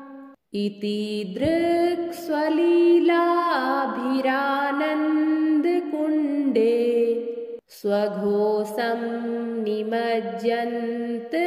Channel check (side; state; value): both; identical; correlation 1.00